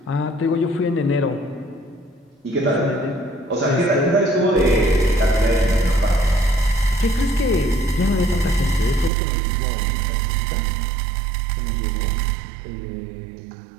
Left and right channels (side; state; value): left; drops out; at 9.1 s